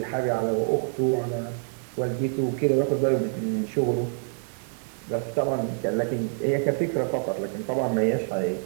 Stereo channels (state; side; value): silent; left; 61 dB below the other